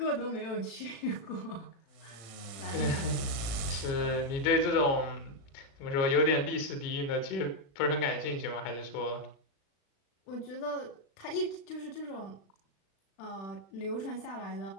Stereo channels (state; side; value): late; right; 35 ms